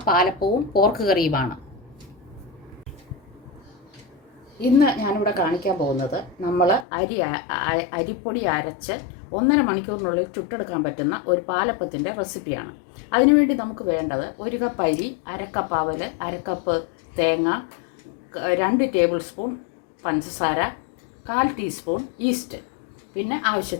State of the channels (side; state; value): right; drops out; at 6.9 s